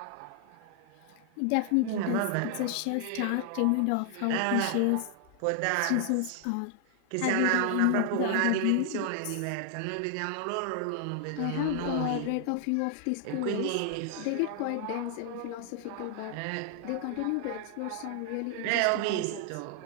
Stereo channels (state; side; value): different; both; correlation 0.00